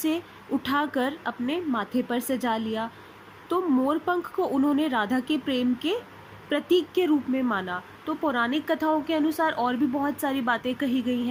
उठाकर अपने माथे पर सजा लिया। तो मोर पंख को उन्होंने राधा के प्रेम के प्रतीक के रूप में माना। तो पौराणिक कथाओं के अनुसार और भी बहुत सारी बातें कही गई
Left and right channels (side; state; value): both; identical; correlation 1.00